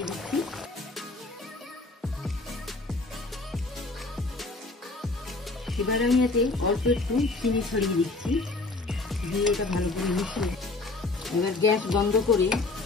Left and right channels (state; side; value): quieter; right; 3.3 dB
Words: দিচ্ছি। এবার আমি এতে অল্প একটু চিনি ছড়িয়ে দিচ্ছি, দিয়ে এটা ভালো করে মিশিয়ে এবার গ্যাস বন্ধ করে